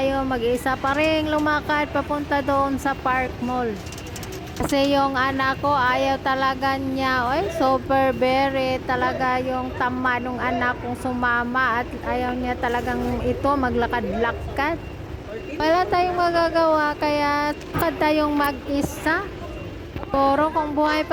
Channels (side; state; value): both; identical; correlation 1.00